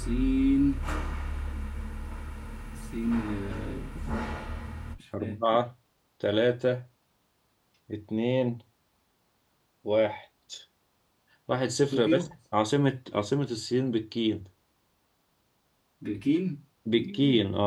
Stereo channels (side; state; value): both; identical; correlation 1.00